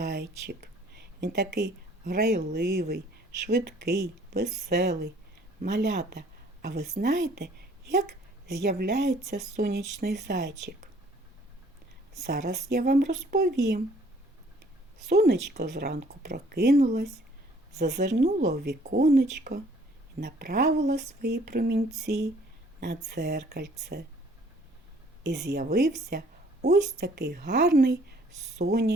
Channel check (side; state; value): both; normal; correlation 0.58